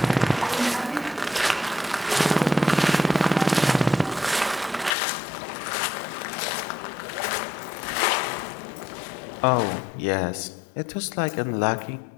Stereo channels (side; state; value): right; drops out; at 5.0 s